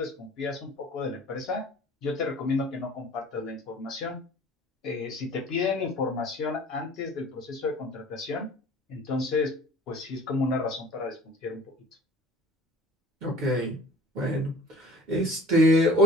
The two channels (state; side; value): normal; both; correlation 0.48